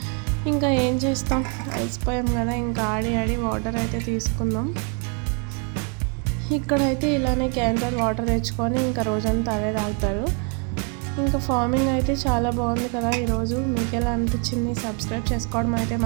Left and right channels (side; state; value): left; quieter; 37.3 dB